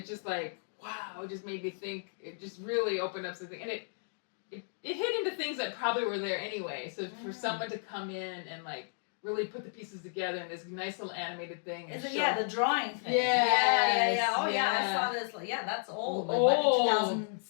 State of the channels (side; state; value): right; silent; digital silence